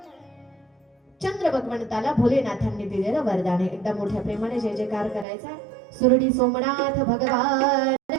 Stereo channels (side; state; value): left; drops out; at 5.2 s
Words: चंद्र भगवंताला भोलेनाथांनी दिलेलं वरदान आहे. एकदा मोठ्या प्रेमाने जय जयकार करायचा. सुरडी सोमनाथ भगवान